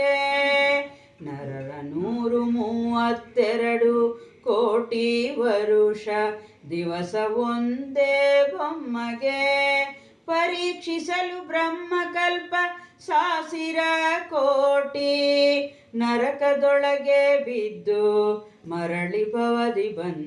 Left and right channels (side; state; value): both; identical; correlation 1.00